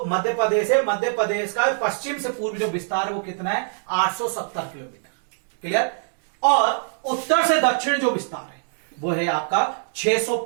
का पश्चिम से पूर्व जो विस्तार है वो कितना है, 870 किलोमीटर। क्लियर? और उत्तर से दक्षिण जो विस्तार है वो है आपका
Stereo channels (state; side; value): silent; left; digital silence